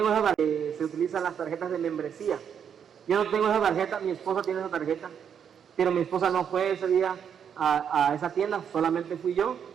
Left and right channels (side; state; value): left; quieter; 8.0 dB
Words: esa tarjeta, se utilizan las tarjetas de membresía. Yo no tengo esa tarjeta, mi esposa tiene esa tarjeta, pero mi esposa no fue ese día a esa tienda, solamente fui yo.